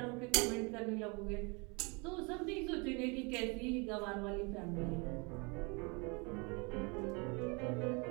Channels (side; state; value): left; quieter; 30.5 dB